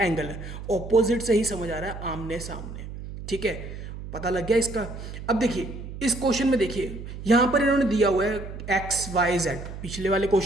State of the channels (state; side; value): noise; right; hum, 10 dB below the sound